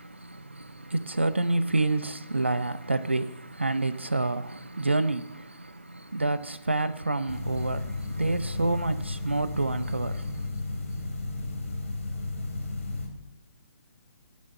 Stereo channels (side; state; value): both; inverted; correlation -0.87